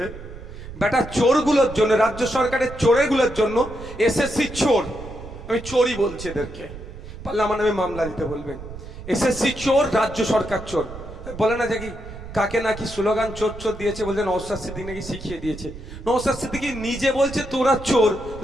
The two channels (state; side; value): noise; right; rumble, 13 dB below the sound